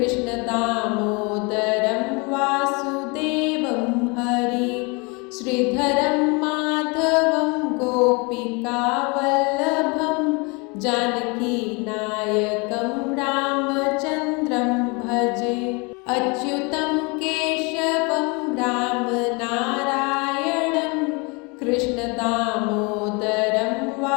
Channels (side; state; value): right; quieter; 29.6 dB